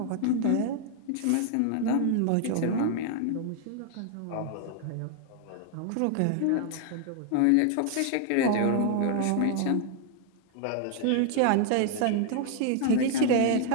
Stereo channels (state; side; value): different; both; correlation 0.00